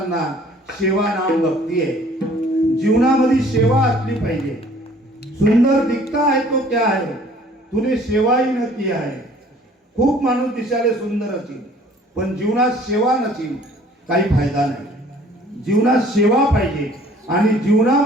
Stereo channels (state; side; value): normal; both; correlation 0.55